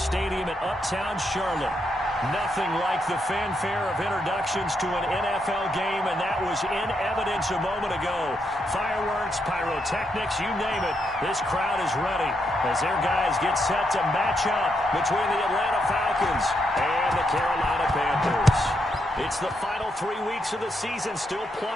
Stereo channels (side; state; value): both; normal; correlation 0.80